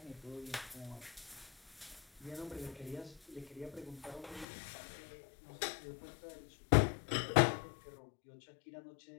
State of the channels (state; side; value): drops out; right; at 4.5 s